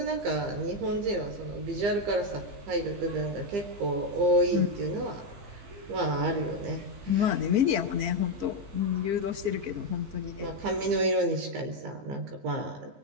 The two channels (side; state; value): left; late; 15 ms